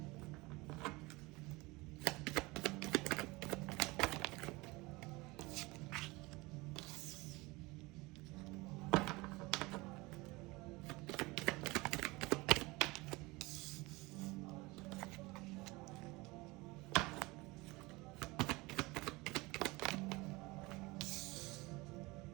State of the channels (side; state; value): left; quieter; 23.1 dB